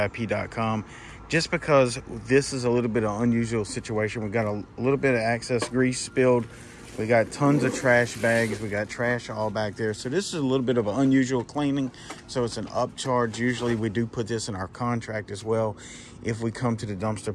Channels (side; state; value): both; identical; correlation 1.00